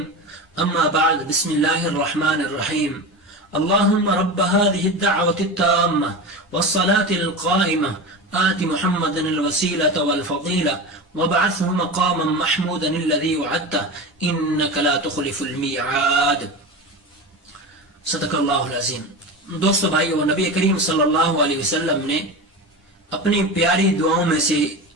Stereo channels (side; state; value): both; normal; correlation 0.26